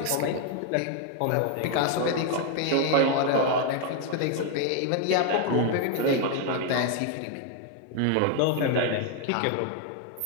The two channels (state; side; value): different; both; correlation 0.00